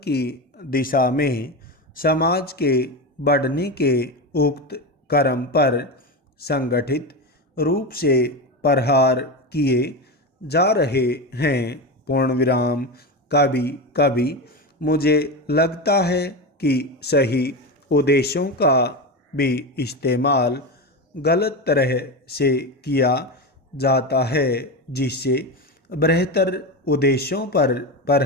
की दिशा में समाज के बढ़ने के उक्त क्रम पर संगठित रूप से प्रहार किए जा रहे हैं। पूर्ण विराम। कभी कभी मुझे लगता है कि सही उद्देश्यों का भी इस्तेमाल गलत तरह से किया जाता है, जिससे बेहतर उद्देश्यों पर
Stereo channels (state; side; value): normal; both; correlation 0.19